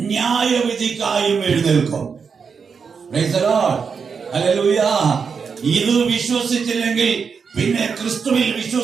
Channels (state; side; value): quieter; left; 5.8 dB